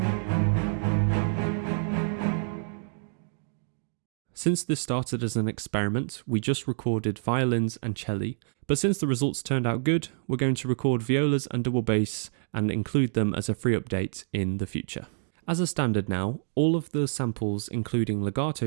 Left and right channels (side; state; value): left; silent; digital silence